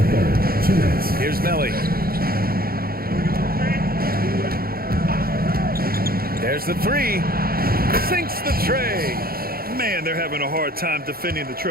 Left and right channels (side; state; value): left; late; 0.44 ms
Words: third. 2 minutes. Here's Melly. There's the 3. Sinks the tray. Man, they're having a hard time defending the